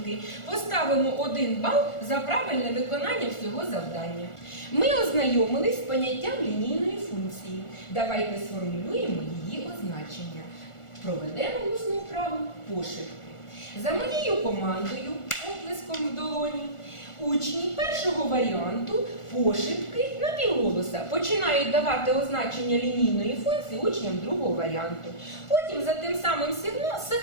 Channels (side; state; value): right; late; 1.4 ms